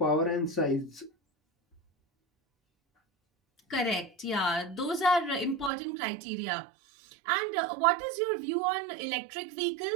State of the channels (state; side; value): drops out; left; at 5.7 s